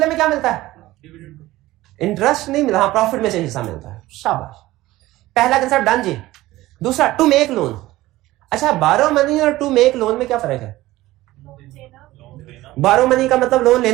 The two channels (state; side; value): quieter; left; 17.2 dB